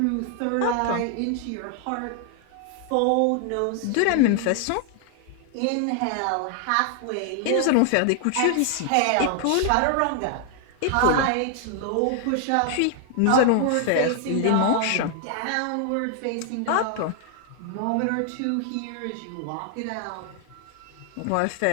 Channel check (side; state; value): both; different; correlation 0.00